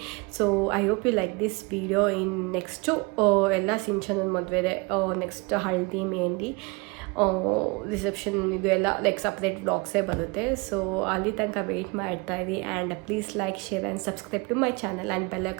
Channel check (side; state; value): left; quieter; 28.1 dB